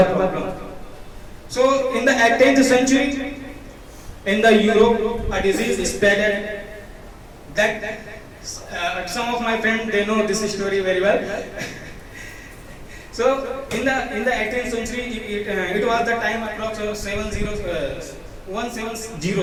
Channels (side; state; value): both; identical; correlation 1.00